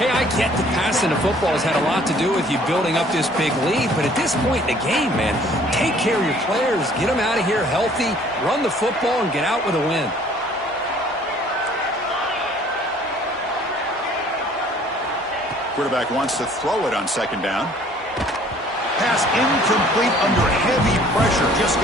I get the passing of football has had a lot to do with you building up this big lead, but at this point in the game, man, take care of your players, get them out of here healthy, run the football, and get out with a win. Quarterback wants to throw it on 2nd down. Pass incomplete under heavy pressure. Just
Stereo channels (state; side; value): normal; both; correlation 0.56